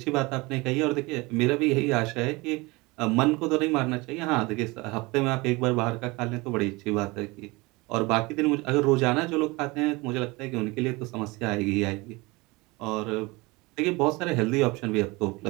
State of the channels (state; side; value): quieter; left; 23.9 dB